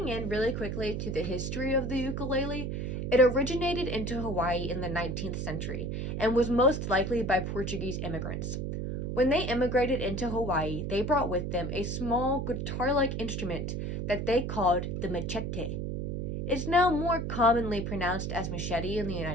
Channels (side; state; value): right; noise; hum, 3 dB below the sound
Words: in really quickly to the history of the ukulele, it originated into Hawaii in the 19th century and was most likely by Portuguese immigrants. When they immigrated into Hawaii, they brought with them a small guitar-like instrument that they called the machete. It's now more commonly pronounced as machete in the